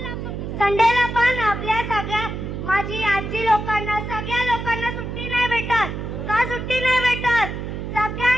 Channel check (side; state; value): right; noise; hum, 6 dB below the sound